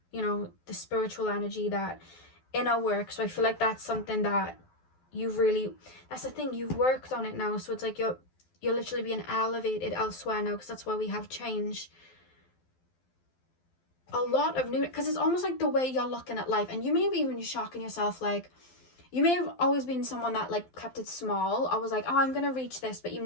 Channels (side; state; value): right; late; 12 ms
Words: the spiritual energy, that inner work. So I feel like that's something that that's the thing, you've worked on it now. So it's like you're literally being elevated elsewhere now, because that's why we have change. A lot of new, because it's almost like the way you're looking at life, and you may be even shocking yourself, like, you may have always been someone that like kept it small. I was like, oh, I'm gonna reach this, but you